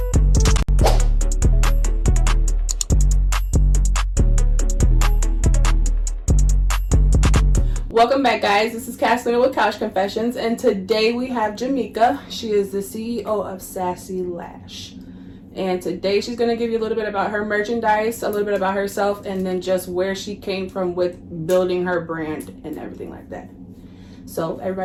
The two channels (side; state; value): both; identical; correlation 1.00